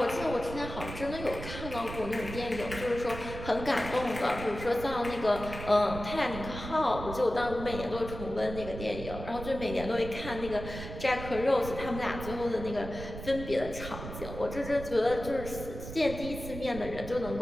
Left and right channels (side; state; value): right; noise; rumble, 9 dB below the sound